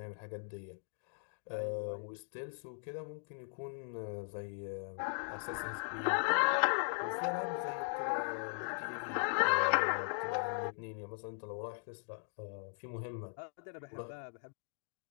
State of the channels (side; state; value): right; silent; digital silence